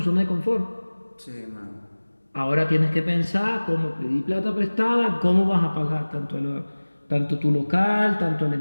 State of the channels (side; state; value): both; inverted; correlation -1.00